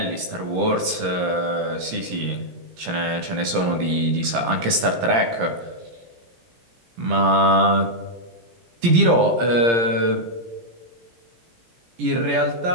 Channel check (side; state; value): left; late; 17 ms